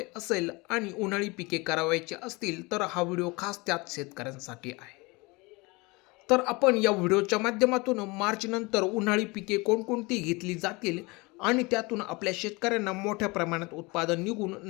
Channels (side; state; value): right; quieter; 25.4 dB